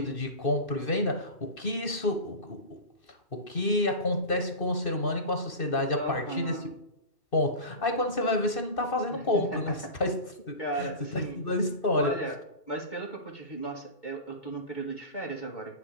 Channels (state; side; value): late; right; 2.6 ms